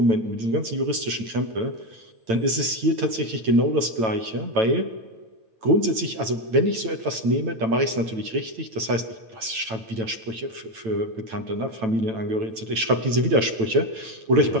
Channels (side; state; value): left; late; 9.0 ms